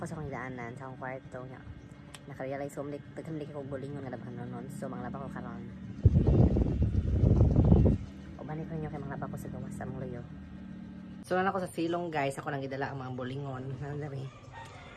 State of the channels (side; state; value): both; identical; correlation 1.00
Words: sa akong daanan sa akong kwarto nya. Naka-realize ko daghan ko bulingon nga labhan nonon. So manglaba ko karon. Ubani ko nyo kay manglaba ko sa gawas sa mong luyo. So na ako sa silong guys, ako nang gidala ang mga bulingon. Nandari.